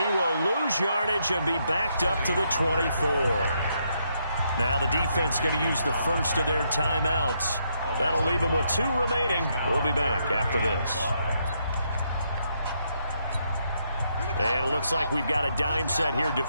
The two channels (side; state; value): both; inverted; correlation -0.77